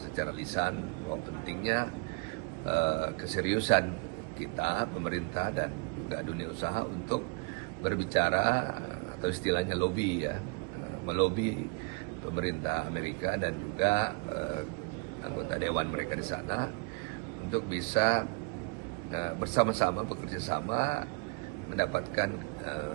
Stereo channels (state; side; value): quieter; left; 31.6 dB